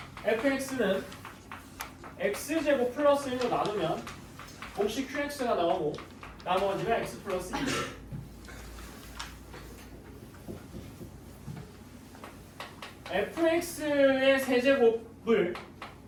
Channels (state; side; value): identical; both; correlation 1.00